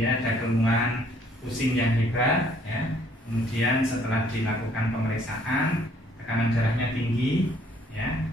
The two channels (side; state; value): both; normal; correlation 0.62